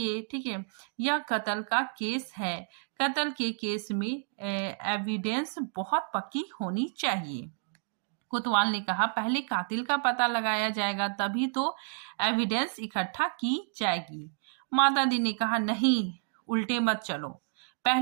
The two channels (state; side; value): silent; left; 58 dB below the other